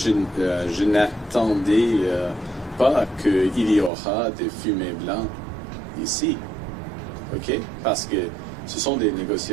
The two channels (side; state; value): left; drops out; at 3.9 s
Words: n'attendais pas qu'il y aura des fumées blancs ici, ok? Parce que ce sont des